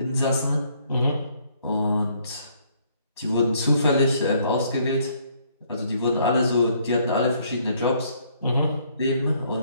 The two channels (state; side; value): inverted; both; correlation -0.66